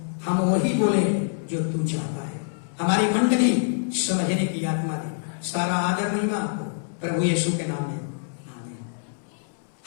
हम वही बोले जो तू चाहता है। हमारी मंडली समझने की आत्मा दे। सारा आदर महिमा आपको प्रभु यीशु के नाम में, आमीन।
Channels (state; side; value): silent; right; 61 dB below the other